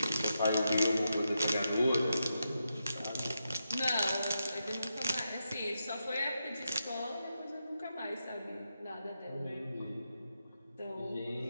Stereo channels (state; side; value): inverted; both; correlation -0.86